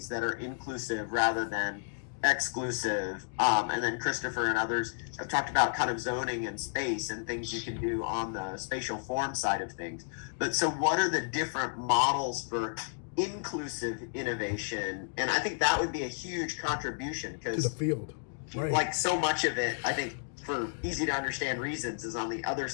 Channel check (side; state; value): right; silent; digital silence